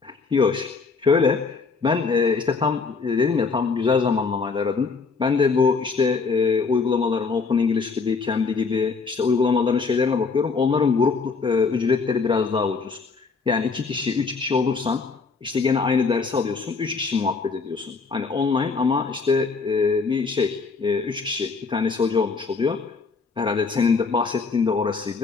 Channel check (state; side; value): quieter; right; 4.7 dB